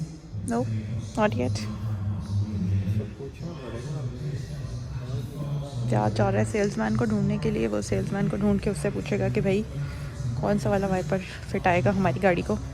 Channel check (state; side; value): identical; both; correlation 1.00